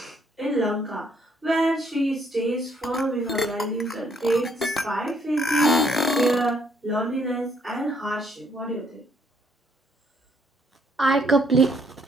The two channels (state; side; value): normal; both; correlation 0.68